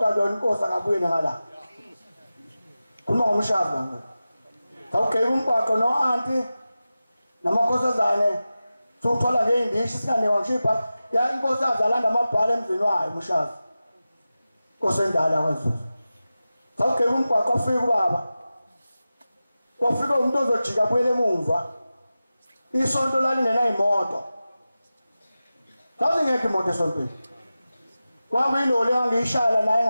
yona inkosi akabuyele ngala khuluma ngomshazi ngakho sakugqiba umgwaqo no-anti namakhosazane sokuthola ngey'ndishi singanewa ngishipha ya inkosazi alanda amabhala emzini wayo umshazi inkosi endala kwaZulu sakugqiba umgwaqo wafika ubaba wafika umuntu ozojika abuyele emumva isonto lalingenayimoto sasingekho imoto esontweni kwakuyiloli engangiyishala naye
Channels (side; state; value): both; inverted; correlation -0.95